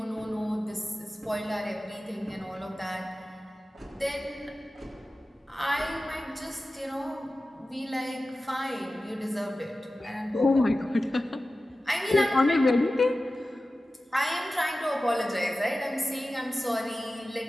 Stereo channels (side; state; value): both; normal; correlation 0.95